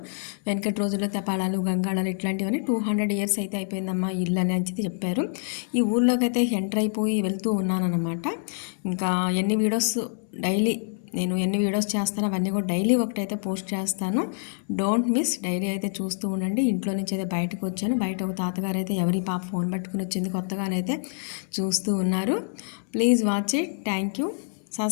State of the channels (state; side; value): silent; right; 61 dB below the other